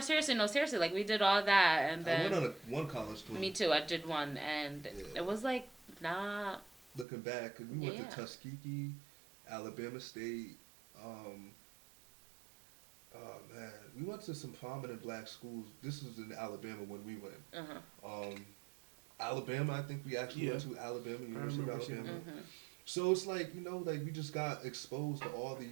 No, seriously, like, we did all that, and then... I went on one college tour. Me too, I did one, and it was, like, not... Looking back, we went to Tuskegee, Alabama State, oh man, we went to some prominent black schools. This was in Alabama when we went. Alabama, I think we actually went to Alabama, University of Alabama. So it's like, like we just got exposed to all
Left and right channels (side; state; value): left; drops out; at 7.1 s